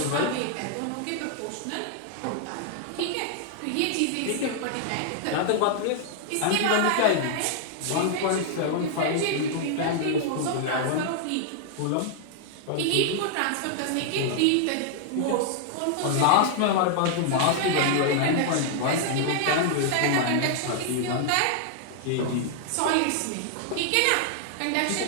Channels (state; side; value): different; both; correlation -0.01